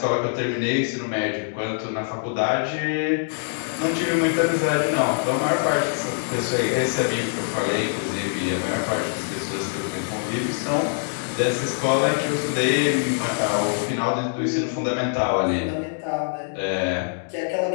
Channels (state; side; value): silent; right; digital silence